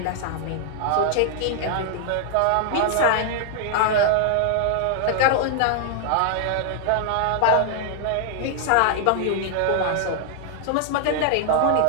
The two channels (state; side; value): different; both; correlation 0.00